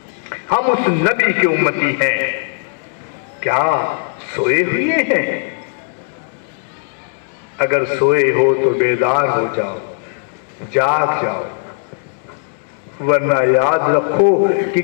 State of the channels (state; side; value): silent; right; 58 dB below the other